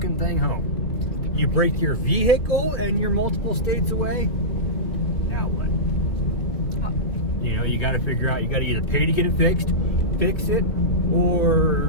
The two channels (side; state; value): right; late; 3.0 ms